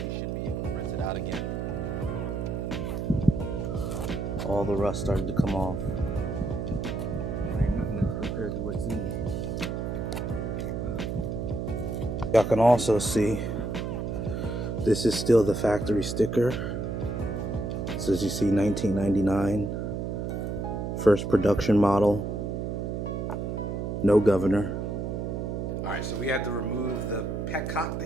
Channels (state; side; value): noise; right; hum, 3 dB below the sound